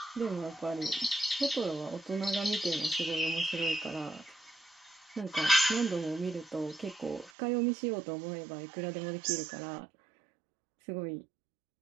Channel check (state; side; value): drops out; left; at 7.3 s